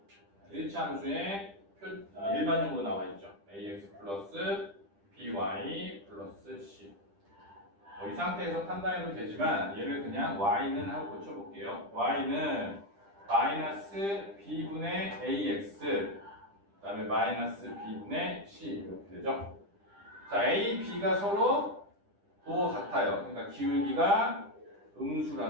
1차 함수의 일반형으로 나와 있죠. ax 플러스 by 플러스 c. 이 상태에서 판단해도 되지만 얘를 그냥 y는 하고 고쳐볼게요. y는 마이너스 b분의 ax 그 다음에 마이너스 b분의 c 이렇게 되죠. 자, a, b가 서로 부호 같아요. 그러니까 기울기가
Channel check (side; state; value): left; late; 10 ms